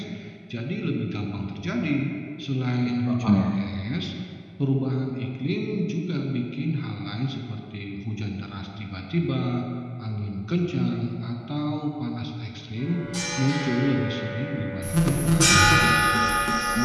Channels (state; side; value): identical; both; correlation 1.00